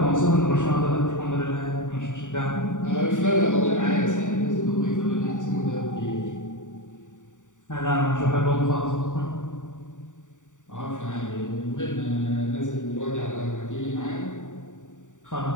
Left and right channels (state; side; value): late; right; 0.86 ms